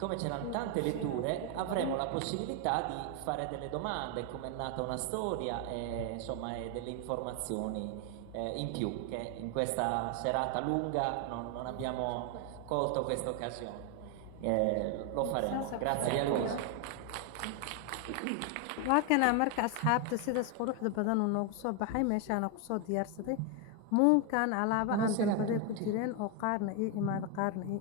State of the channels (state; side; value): different; both; correlation 0.01